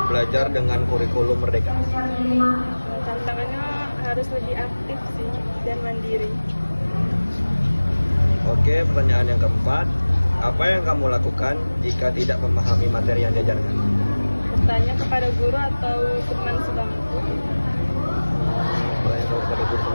belajar dengan kurikulum Merdeka? Tantangannya harus lebih aktif sih dan mandiri. Oke, pertanyaan yang keempat, apa yang kamu lakukan jika tidak memahami materi yang diajarkan? Bertanya kepada guru atau teman sebangku. Pertanyaan kepada guru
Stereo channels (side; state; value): both; inverted; correlation -1.00